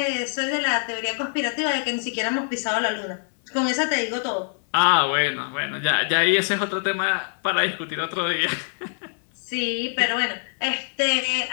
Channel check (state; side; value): silent; right; 62 dB below the other